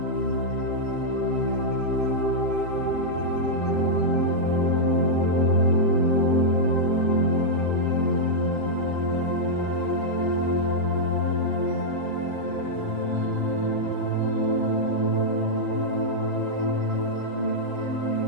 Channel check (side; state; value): right; late; 7.7 ms